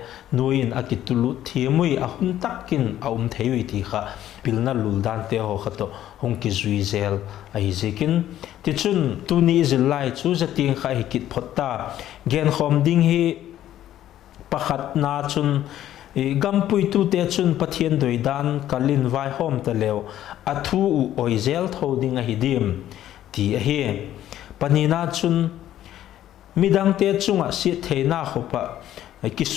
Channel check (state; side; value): quieter; right; 12.3 dB